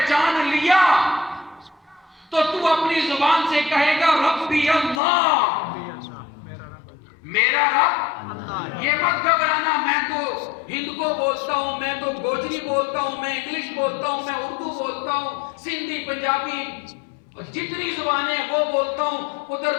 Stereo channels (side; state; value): right; drops out; at 5.0 s